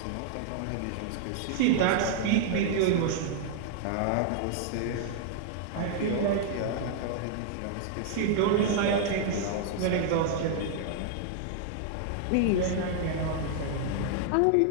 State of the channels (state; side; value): different; both; correlation -0.01